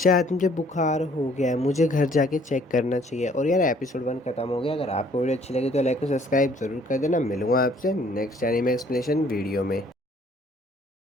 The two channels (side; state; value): both; normal; correlation 0.60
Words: मुझे बुखार हो गया है, मुझे घर जाके चेक करना चाहिए। और यार एपिसोड 1 खत्म हो गया। अगर आपको वीडियो अच्छी लगी तो लाइक और सब्सक्राइब ज़रूर कर देना। मिलूंगा आपसे नेक्स्ट एनीमे एक्सप्लेनेशन वीडियो में।